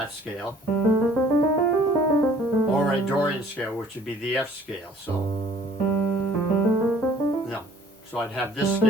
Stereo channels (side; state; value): both; normal; correlation 0.55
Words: scale, or a Dorian scale, which would be the F scale. So I'd have this